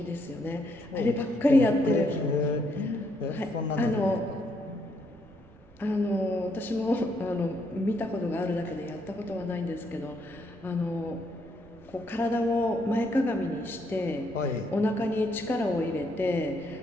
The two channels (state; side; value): noise; right; rumble, 26 dB below the sound